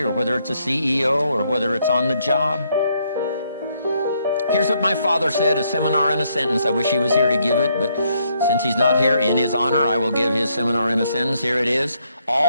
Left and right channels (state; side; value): inverted; both; correlation -0.73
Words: whether it's a CEO or whether it's on the job. Here's what my father said, a seminar in a sentence. I wish he was here to give it, but since he's not here, in his honor, I will give his seminar in a sentence. Here it is.